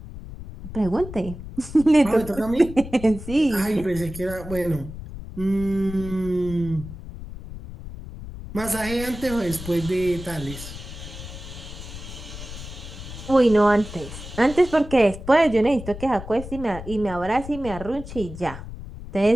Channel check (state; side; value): noise; left; rumble, 12 dB below the sound